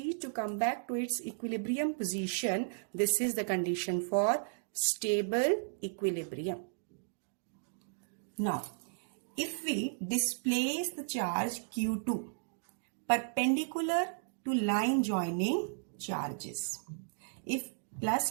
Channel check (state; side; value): silent; left; digital silence